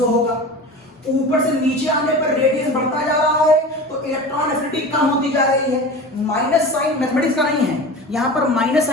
होगा। ऊपर से नीचे आने पर रेडियस बढ़ता जा रहा है तो इलेक्ट्रॉन एफिनिटी कम होती जा रही है। माइनस साइन मैथमेटिक्स का नहीं है, यहां पर माइनस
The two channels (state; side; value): normal; both; correlation 0.33